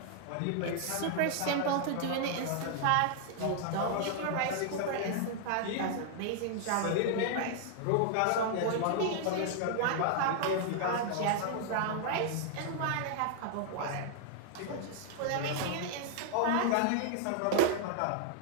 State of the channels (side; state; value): both; different; correlation -0.01